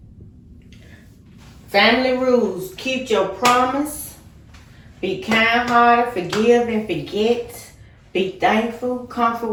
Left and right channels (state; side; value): identical; both; correlation 1.00